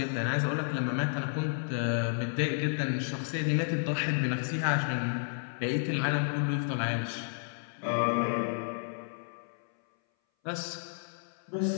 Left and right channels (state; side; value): silent; right; 57 dB below the other